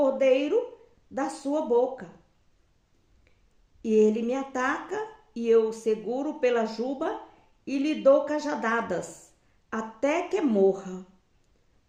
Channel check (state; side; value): identical; both; correlation 1.00